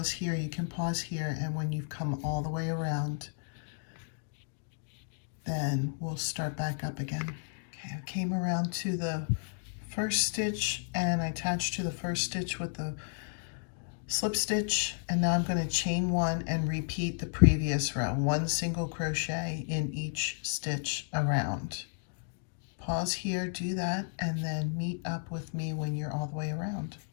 here. You can pause here, and when you've come all the way around, then we'll start back up again. Okay, I came around to the first stitch, and I attached to the first stitch with the slip stitch, and now I'm going to chain 1 and repeat the previous row. 1 single crochet in each stitch around. Pause here, do that, and then meet up with me when you're all the way around.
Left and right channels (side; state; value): right; silent; digital silence